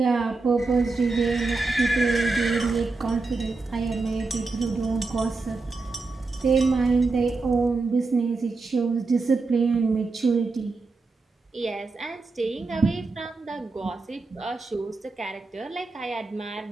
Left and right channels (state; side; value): quieter; left; 3.8 dB